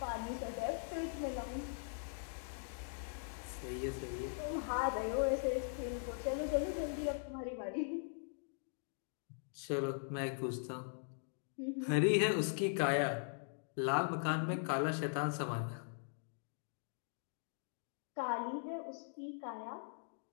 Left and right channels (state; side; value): silent; right; digital silence